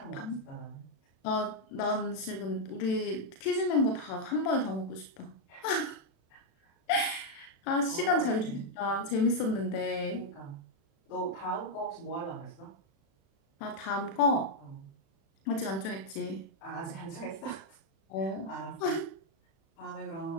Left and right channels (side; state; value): right; late; 36 ms